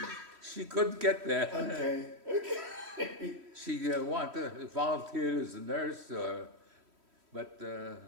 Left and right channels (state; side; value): late; left; 3.1 ms